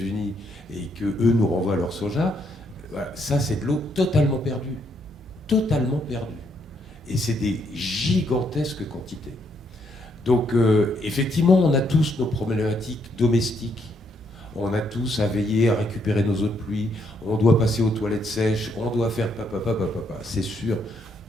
et que eux nous renvoient leur soja, voilà, ça c'est de l'eau totalement perdue. Totalement perdue. Et c'est des gigantesques quantités. Donc effectivement, on a tous nos problématiques domestiques. On a tous à veiller à récupérer nos eaux de pluie, on doit passer aux toilettes sèches, on doit faire papa, c'est sûr.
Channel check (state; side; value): normal; both; correlation 0.74